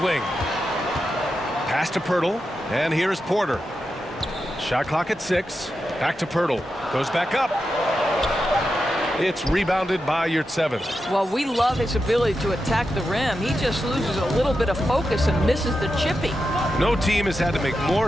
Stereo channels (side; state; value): both; normal; correlation 0.89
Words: wing. Pass to Pirtle. And here's Porter. Shot clock at 6. Back to Pirtle. Goes back up. It's rebounded by Yurtseven. Well, we love his ability to attack the rim. He just loses a little bit of focus and misses the chippy. No team has had to make